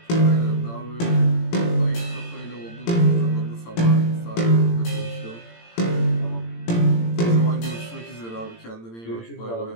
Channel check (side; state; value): right; late; 18 ms